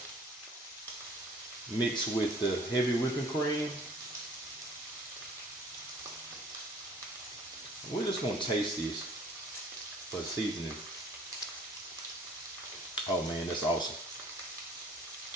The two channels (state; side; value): normal; both; correlation 0.54